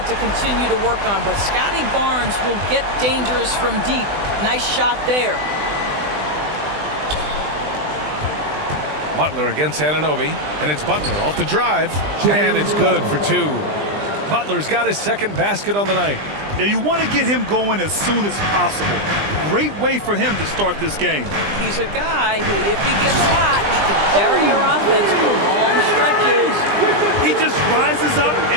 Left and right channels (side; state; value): left; late; 20 ms